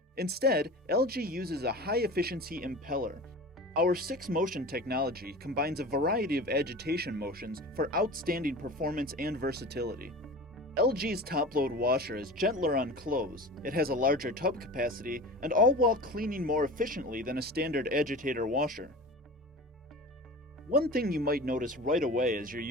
Instead, LG uses a high-efficiency impeller. Our 6-motion technology combines a variety of agitation motions for outstanding performance and versatility. LG's top-load washer is gentler on clothes, it has a larger tub capacity, and all while cleaning more efficiently than a standard agitator washer. One thing you might notice right away as you're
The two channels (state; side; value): normal; both; correlation 0.35